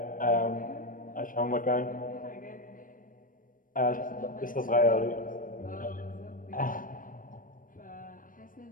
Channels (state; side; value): late; right; 0.40 ms